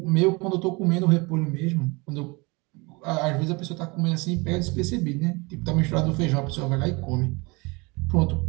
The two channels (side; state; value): left; quieter; 26.8 dB